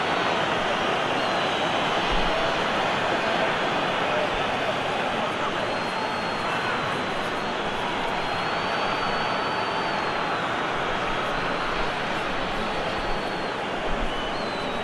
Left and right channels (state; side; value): identical; both; correlation 1.00